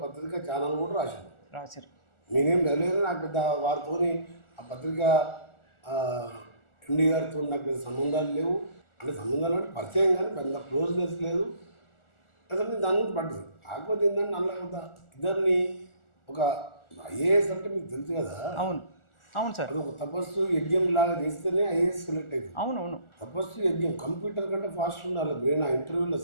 పత్రిక ఛానల్ కూడా రాశారు. నేనేం వెళ్ళలేదు, నాకు పెద్ద వారితోని ఆ పత్రిక ఎండి గారితో నాకు పెద్ద సంబంధాలు లేవు. అంటే సంబంధాలు అంటే పరిచయం కానీ పెద్ద క్లోజ్నెస్ లేదు. అసలు నేను దాని గురించి పడ్డది. కాకపోతే ఏంటంటే నల్ల ఇద్దరిని ఒక ఐఏఎస్ అంటే మీకు తెలుసు కదా. అవును అవును సార్, అది ఒక తపస్సు యజ్ఞం లాగా చేస్తేనే ఐఏఎస్ సెలెక్ట్ అవుతుంది. అవునవును, తపస్సు యజ్ఞం కంప్యూటర్ కంటే ఫాస్ట్ ఉండాలి బ్రెయిన్ ఆ ఇంటర్వ్యూలో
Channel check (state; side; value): late; right; 1.4 ms